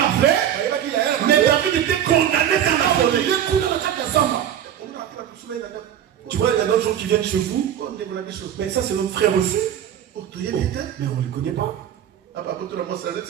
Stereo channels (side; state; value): left; quieter; 10.2 dB